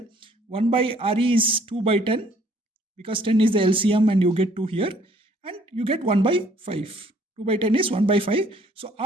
1 by Re is 2 by 10 because 10 is the LCM and you get 2 here. And you get 1 by 5. 2 by 10 is 1 by 5. So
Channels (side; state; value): both; normal; correlation 0.61